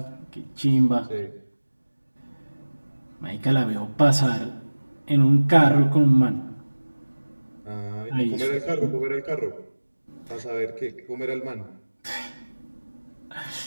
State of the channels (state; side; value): inverted; both; correlation -1.00